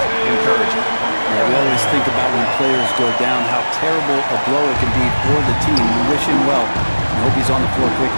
encouraging. Yeah, we always think about when players go down, how terrible a blow it can be for the team. We wish him well. I hope he's on the floor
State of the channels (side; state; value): both; inverted; correlation -1.00